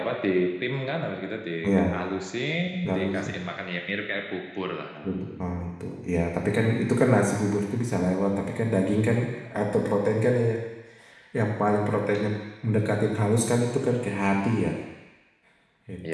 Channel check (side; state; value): both; identical; correlation 1.00